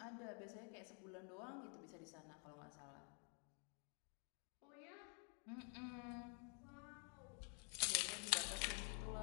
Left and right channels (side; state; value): right; quieter; 39.3 dB